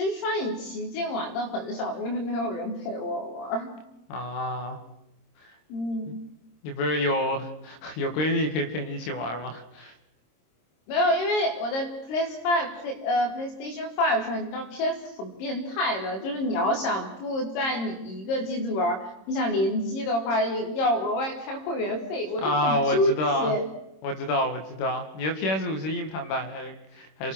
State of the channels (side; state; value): right; late; 26 ms